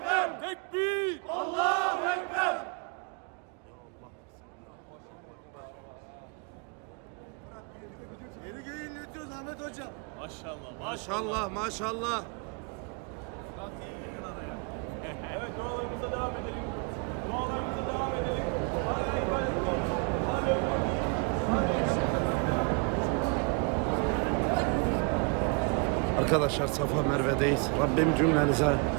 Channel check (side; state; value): left; quieter; 34.1 dB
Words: Tekbir! Allahu Ekber. Yeni göğü inletiyoruz Ahmet Hocam. Maşallah maşallah. Evet, dualarımıza devam edelim. Dualarımıza devam edelim. Arkadaşlar Safa Merve'deyiz. Rabbim cümlenize